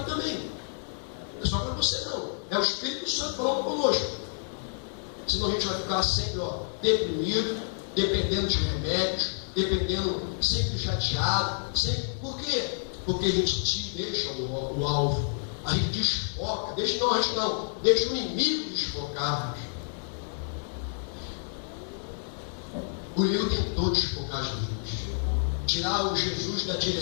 também. Não é só para você não. É o Espírito Santo falando conosco. Senão a gente vai ficar sempre deprimido, dependendo de remédios, dependendo, sempre chateado. Por quê? Porque a gente deixa o alvo. A gente desfoca. Deixa o inimigo desfocar. O inimigo tentou desfocar Jesus, tirar o Jesus da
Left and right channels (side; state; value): right; silent; digital silence